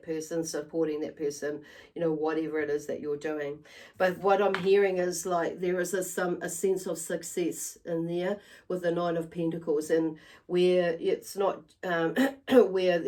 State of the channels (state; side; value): identical; both; correlation 1.00